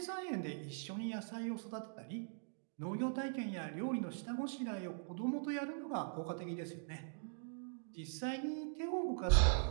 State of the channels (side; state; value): left; silent; digital silence